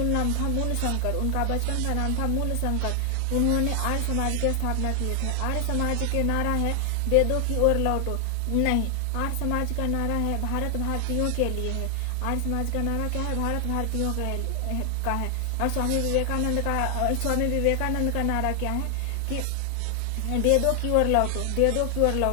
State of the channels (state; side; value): different; both; correlation 0.00